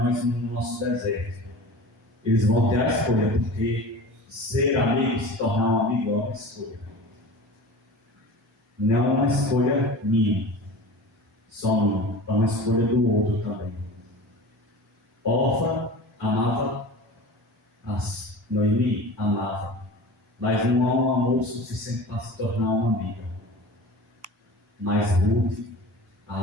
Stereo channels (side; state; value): both; normal; correlation 0.36